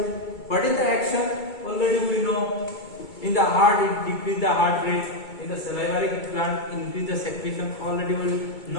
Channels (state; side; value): late; right; 2.3 ms